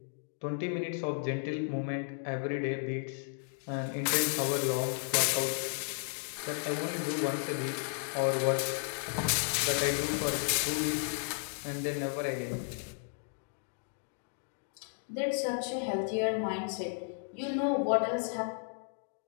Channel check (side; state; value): right; silent; 55 dB below the other